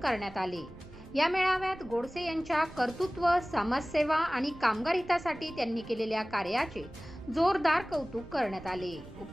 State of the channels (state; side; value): noise; right; rumble, 20 dB below the sound